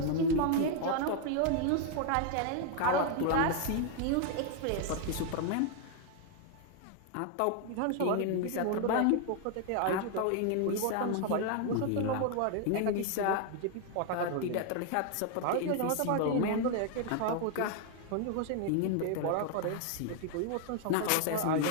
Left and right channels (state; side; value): different; both; correlation 0.00